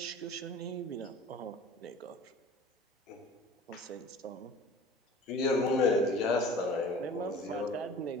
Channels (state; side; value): normal; both; correlation 0.43